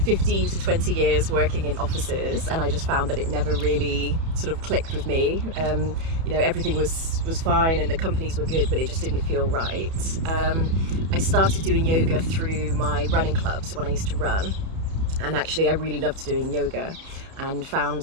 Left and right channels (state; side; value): late; left; 31 ms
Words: 15 to 20 years working in offices, and I just found that it never really sort of clicked with me. You know, everything was fine and the companies were good, but it just didn't feel right. I started doing yoga through my running club, so when I used to run, and actually I really loved doing yoga and found